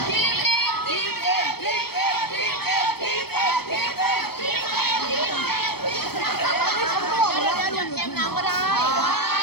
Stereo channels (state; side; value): late; right; 0.96 ms